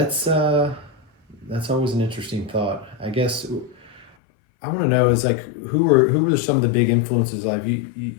that's always an interesting thought. I guess I want to know is like who were some of the big influences? Like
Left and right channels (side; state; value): right; drops out; at 4.1 s